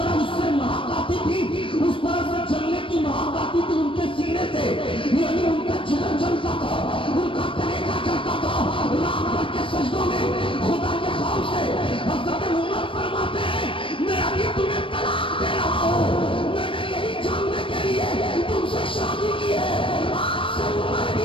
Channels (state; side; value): late; right; 0.25 ms